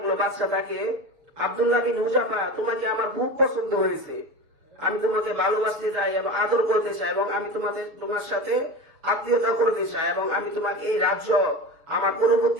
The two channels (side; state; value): left; late; 7.0 ms